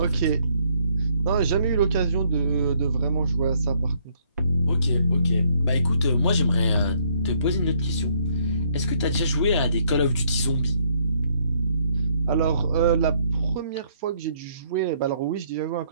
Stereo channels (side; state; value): both; inverted; correlation -0.68